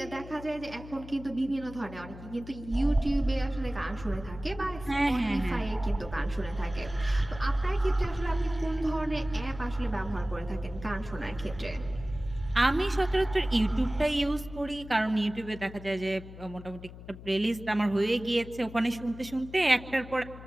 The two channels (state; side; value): noise; left; hum, 15 dB below the sound